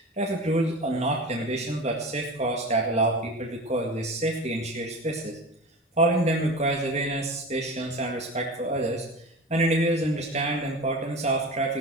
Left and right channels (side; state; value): both; normal; correlation 0.31